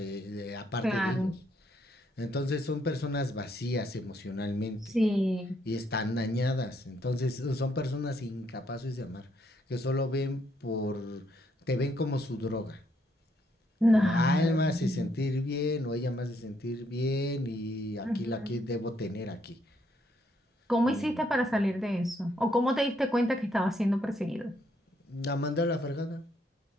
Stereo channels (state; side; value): normal; both; correlation 0.72